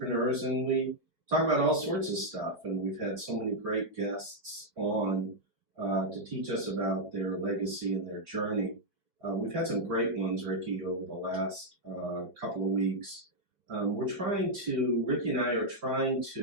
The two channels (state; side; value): late; left; 5.2 ms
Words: and we talk about all sorts of stuff. And we've had so many great guests on to teach us about their legacy and their journey. We've had some great ones, Ricky, over the last couple of weeks. Ricky and I are trying